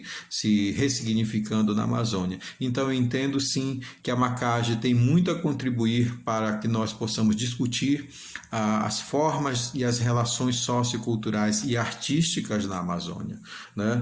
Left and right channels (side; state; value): both; identical; correlation 1.00